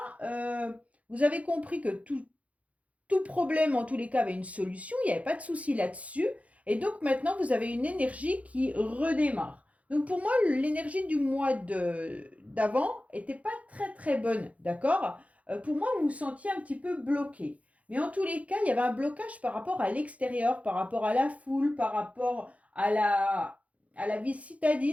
vous avez compris que tout problème en tous les cas avait une solution, il n'y avait pas de souci là-dessus, et donc maintenant vous avez une énergie qui redémarre. Donc pour moi, l'énergie du mois d'avant n'était pas très très bonne, d'accord. Pour moi, vous vous sentiez un petit peu bloqué. Mais en tous les cas, il y avait un blocage par rapport à l'extérieur, par rapport à la foule, par rapport à la vie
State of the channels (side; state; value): left; late; 0.066 ms